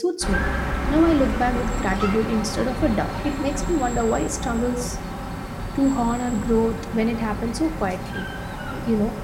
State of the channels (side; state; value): both; identical; correlation 1.00